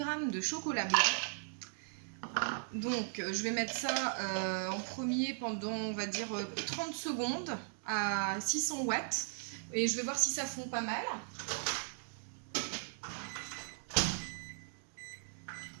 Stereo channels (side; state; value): left; silent; digital silence